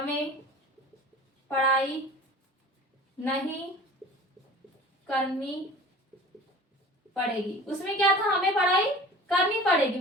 पढ़ाई नहीं करनी पड़ेगी। उसमें क्या था, हमें पढ़ाई करनी पड़ेगी,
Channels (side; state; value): both; normal; correlation 0.41